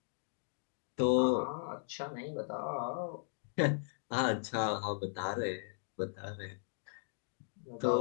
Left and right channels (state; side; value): silent; right; digital silence